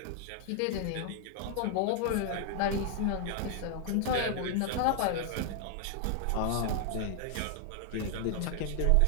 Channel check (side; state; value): both; different; correlation 0.00